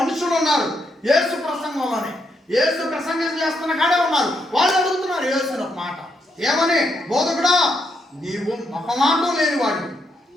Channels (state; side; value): normal; both; correlation 0.78